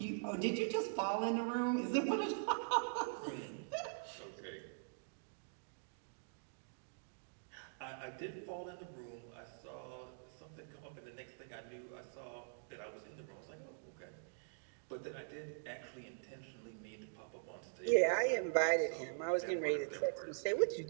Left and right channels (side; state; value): left; silent; digital silence